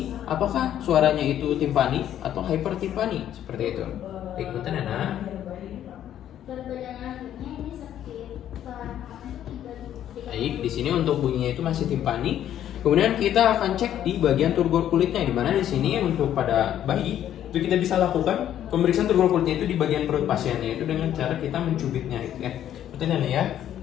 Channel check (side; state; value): right; quieter; 11.0 dB